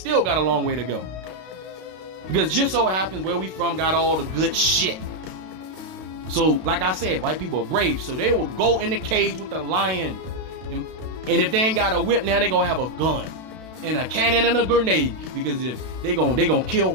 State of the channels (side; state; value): left; late; 32 ms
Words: got a long way to go. Because just so happens where we from got all the good shit. So, like I said, white people are brave. So they will go in the cage with the lion. And if they ain't got a whip, now they gonna have a gun. And a cannon and a grenade. Because if they gonna